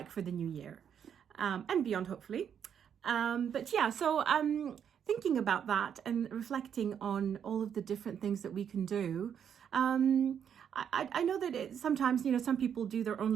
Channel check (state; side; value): quieter; left; 8.3 dB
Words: for the new year and beyond, hopefully. But yeah, so thinking about that and reflecting on all of the different things that we can do. I know that sometimes, some people do their